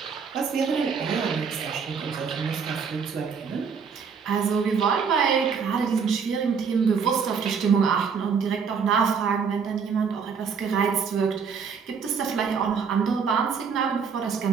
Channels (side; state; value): left; quieter; 6.1 dB